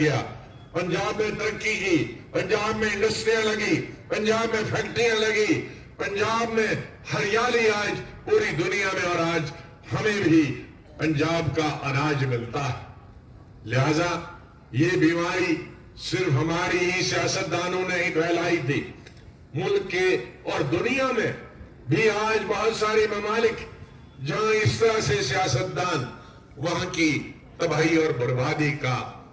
پنجاب میں ترقی کی، پنجاب میں انڈسٹریاں لگی، پنجاب میں فیکٹریاں لگی، پنجاب میں ہریالی آج پوری دنیا میں، اور آج ہمیں بھی پنجاب کا اناج ملتا ہے۔ لہذا یہ بیماری صرف ہماری ہی سیاستدانوں نے ہی پھیلائی تھی، ملک کے اور دنیا میں بھی آج بہت سارے ممالک جہاں اس طرح سے سیاستدان وہاں کی تباہی اور بربادی کا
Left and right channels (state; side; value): identical; both; correlation 1.00